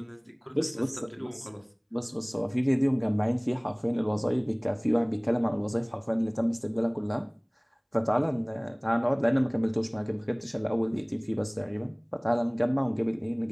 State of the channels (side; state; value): both; identical; correlation 1.00